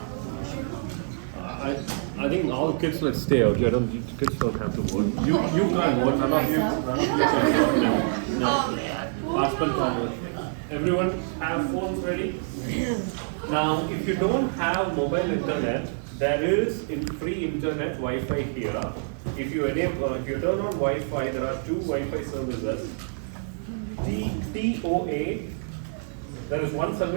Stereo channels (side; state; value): left; silent; digital silence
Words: I think all kids let's stay out. Kids don't have to vote. You can't vote. None of you can vote. No. Husband can't vote. Everyone have phones ready? Now, if you don't have mobile internet, there is free internet Wi-Fi here. If you turn on Wi-Fi, there are 2 Wi-Fi services. TOA. There is one